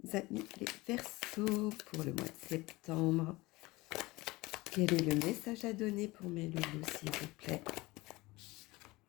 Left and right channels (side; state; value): right; quieter; 21.3 dB